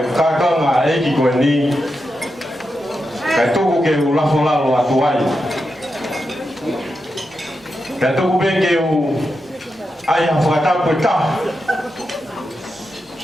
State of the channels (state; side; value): normal; both; correlation 0.87